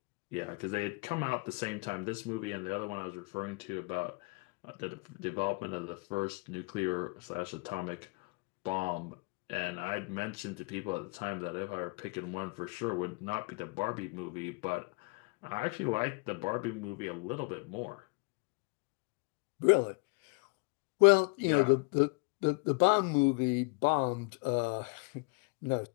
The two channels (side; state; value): right; quieter; 30.1 dB